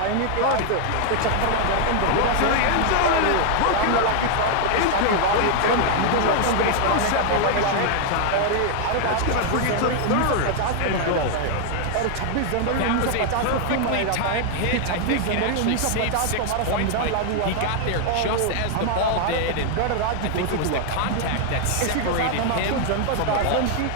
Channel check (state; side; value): different; both; correlation 0.00